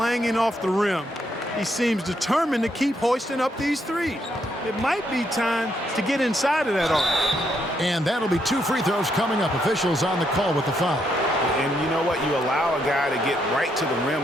off the rim, he seems determined to keep hoisting up these threes. It might be time to get inside of that arc. And that'll be 2 free throws coming up. Officials on the call with the foul. And you know what? You allow a guy to get right to the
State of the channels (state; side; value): normal; both; correlation 0.76